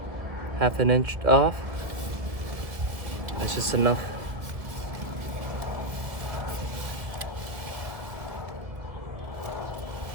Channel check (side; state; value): left; late; 1.7 ms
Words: off. That's just enough.